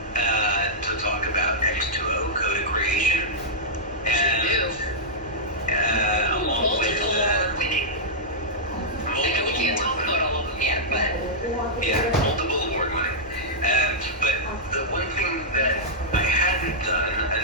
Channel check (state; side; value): normal; both; correlation -0.10